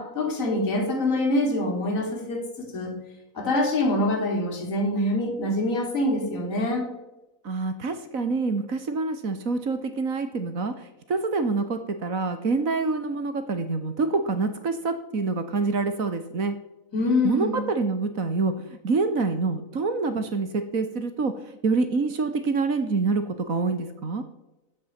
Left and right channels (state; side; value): late; left; 4.0 ms